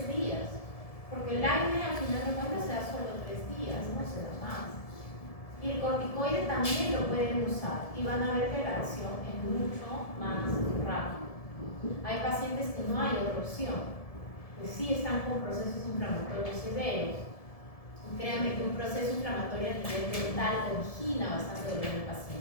días, porque el AINE al final de cuentas se da solo 3 días. Y el corticoide también lo pueden usar y van a ver que la acción es mucho más rápida. Hay pacientes que no hay otra opción, que sí están con procesos inflamatorios severos. Y créanme que un proceso inflamatorio a nivel dental origina bastante dolor en el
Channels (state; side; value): late; right; 1.7 ms